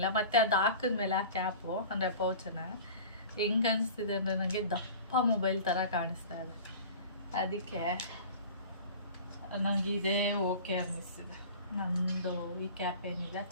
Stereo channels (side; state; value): both; inverted; correlation -0.39